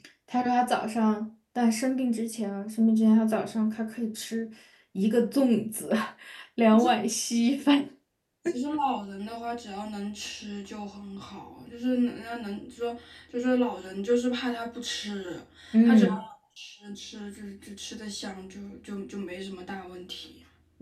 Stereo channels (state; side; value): identical; both; correlation 1.00